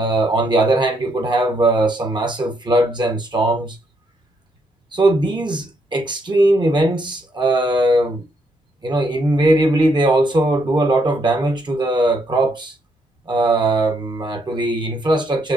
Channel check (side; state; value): both; normal; correlation 0.74